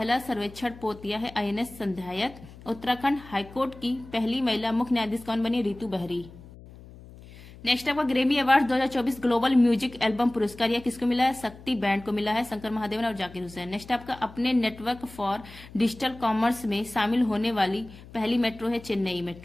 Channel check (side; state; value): left; noise; hum, 19 dB below the sound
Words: सर्वेक्षण पोतिया है INS संध्यायत। उत्तराखंड हाईकोर्ट की पहली महिला मुख्य न्यायाधीश कौन बनी? रितु बहरी। नेक्स्ट आपका, Grammy award 2024 global music album पुरस्कार यह किसको मिला है? शक्ति बैंड को मिला है, शंकर महादेवन और जाकिर हुसैन। नेक्स्ट आपका, अपने नेटवर्क फॉर डिजिटल कॉमर्स में शामिल होने वाली पहली मेट्रो है चेन्नई